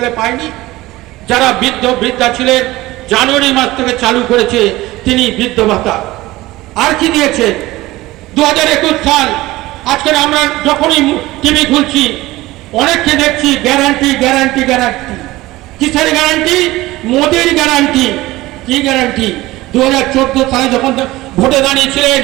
পাইনি, যারা বৃদ্ধা ছিলেন জানুয়ারি মাস থেকে চালু করেছে তিনি বৃদ্ধ ভাতা। আর কি দিয়েছেন? 2021 সাল, আজকের আমরা যখনই টিভি খুলছি অনেককে দেখছি গ্যারান্টি গ্যারান্টি গ্যারান্টি। কিসের গ্যারান্টি? মোদির গ্যারান্টি। কি গ্যারান্টি? 2014 সালে যখন ভোটে দাঁড়িয়েছিলেন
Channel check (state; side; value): quieter; left; 18.4 dB